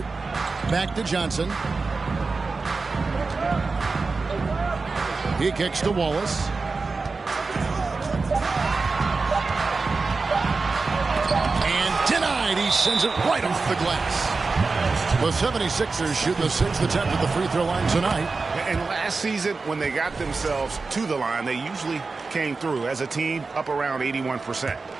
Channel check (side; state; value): left; quieter; 4.1 dB